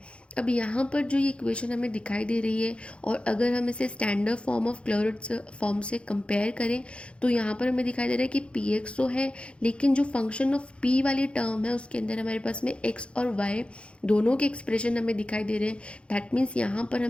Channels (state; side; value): late; right; 0.058 ms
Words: अब यहाँ पर जो ये इक्वेशन हमें दिखाई दे रही है, और अगर हम इसे स्टैंडर्ड फॉर्म ऑफ क्लैरोट्स फॉर्म से कंपेयर करें तो यहाँ पर हमें दिखाई दे रहा है कि पी एक्स तो है, लेकिन जो फंक्शन ऑफ पी वाली टर्म है उसके अंदर हमारे पास में एक्स और वाई दोनों के एक्सप्रेशन हमें दिखाई दे रहे हैं। दैट मीन्स यहाँ पर